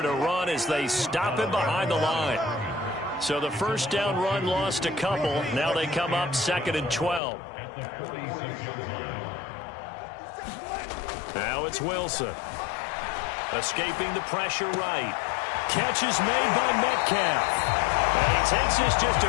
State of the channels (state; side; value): drops out; right; at 7.2 s